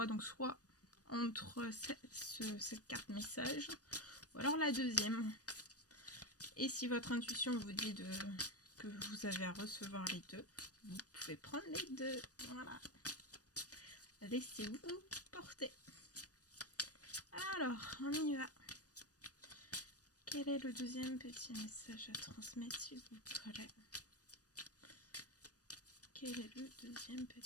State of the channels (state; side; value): late; right; 0.68 ms